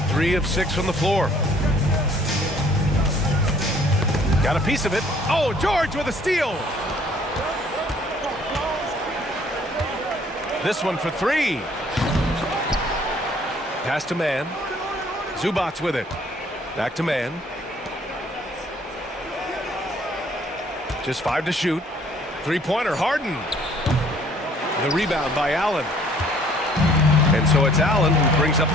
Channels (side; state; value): both; normal; correlation 0.59